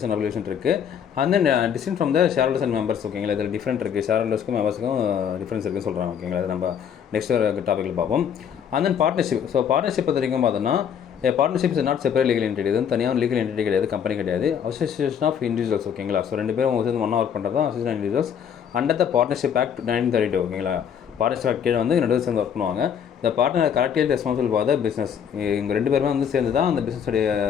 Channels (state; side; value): quieter; right; 8.2 dB